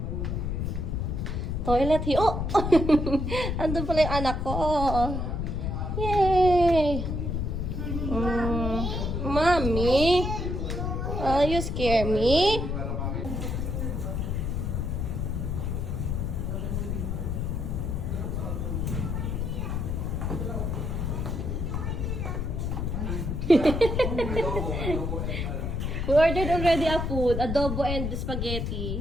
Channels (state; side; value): noise; left; rumble, 1 dB below the sound